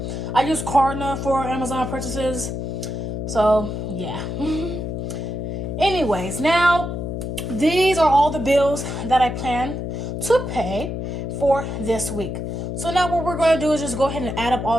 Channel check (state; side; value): noise; left; hum, 4 dB below the sound